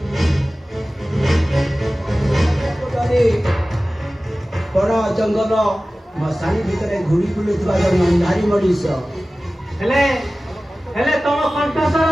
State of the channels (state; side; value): normal; both; correlation 0.97